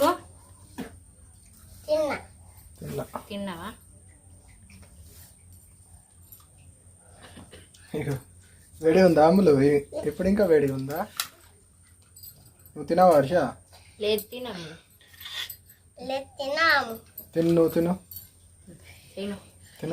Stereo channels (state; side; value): identical; both; correlation 1.00